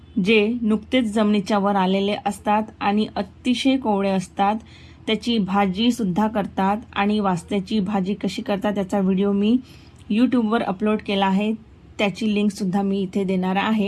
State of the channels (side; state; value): both; identical; correlation 1.00